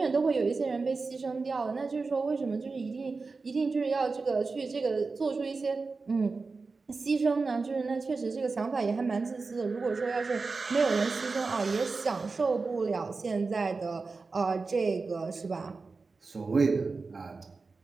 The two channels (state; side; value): quieter; left; 4.2 dB